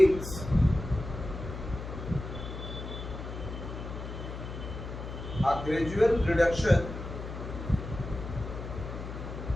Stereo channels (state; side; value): noise; left; hum, 8 dB below the sound